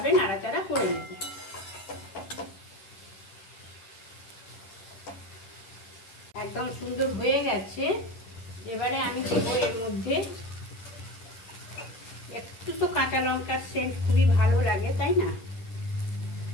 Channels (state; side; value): late; right; 10 ms